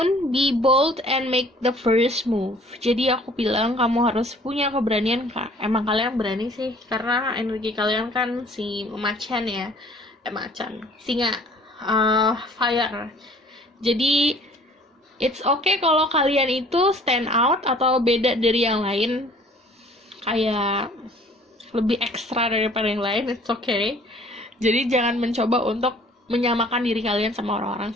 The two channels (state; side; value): normal; both; correlation 0.53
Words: be bold and make the first move. Jadi aku bilang kamu harus punya keberanian, Kak. Emang kalian berani sih, karena energi kalian kan si macan ya. Macan, singa, fire. Jadi it's okay kalau kalian itu stand out atau beda dari yang lain. Kayak lebih ekstra daripada yang lain, it's okay. Jadi jangan mencoba untuk menyamakan diri kalian sama orang-orang